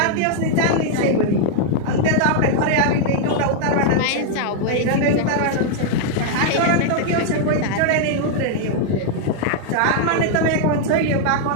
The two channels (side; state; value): both; different; correlation -0.01